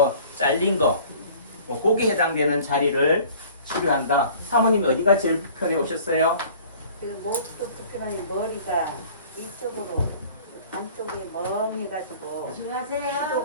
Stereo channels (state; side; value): inverted; both; correlation -0.49